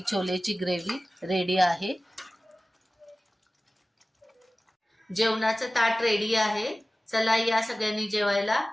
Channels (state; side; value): normal; both; correlation 0.97